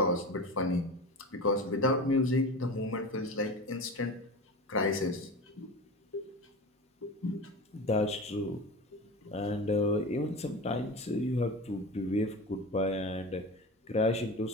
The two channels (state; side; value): normal; both; correlation 0.29